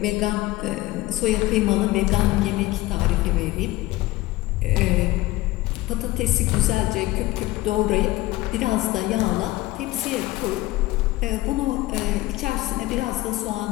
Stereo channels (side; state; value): right; quieter; 18.2 dB